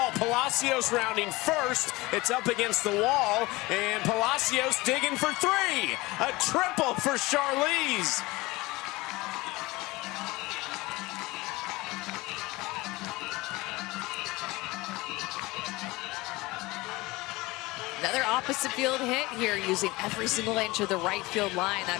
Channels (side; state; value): right; quieter; 21.5 dB